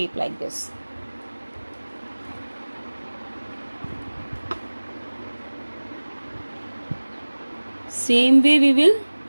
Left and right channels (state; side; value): inverted; both; correlation -1.00